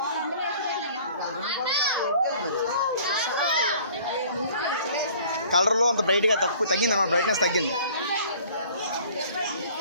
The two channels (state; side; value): inverted; both; correlation -0.51